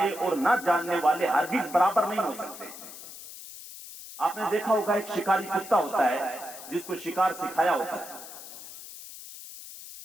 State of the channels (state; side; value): noise; left; hiss, 14 dB below the sound